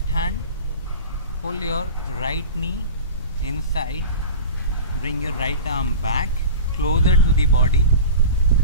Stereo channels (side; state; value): both; inverted; correlation -0.31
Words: hand pull your right knee inside, bring your right arm back closer to the body,